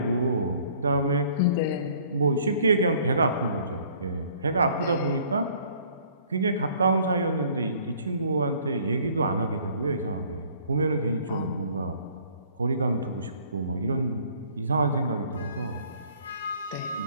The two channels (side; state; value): both; inverted; correlation -0.57